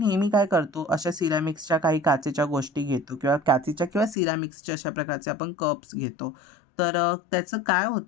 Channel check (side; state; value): right; drops out; at 4.2 s